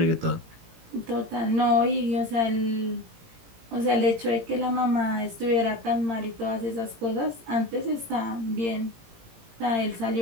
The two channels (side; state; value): left; late; 18 ms